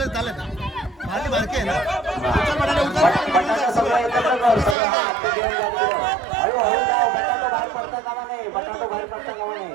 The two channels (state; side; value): drops out; left; at 4.8 s